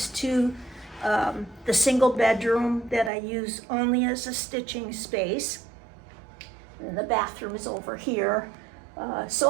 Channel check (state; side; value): drops out; left; at 3.1 s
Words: to the single bedroom that I use only as a stitching space. And the bathroom is over here.